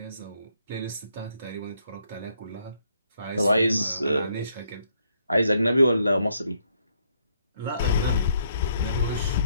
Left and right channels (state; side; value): inverted; both; correlation -0.72